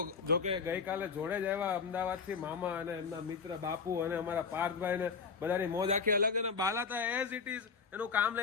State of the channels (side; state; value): right; quieter; 5.4 dB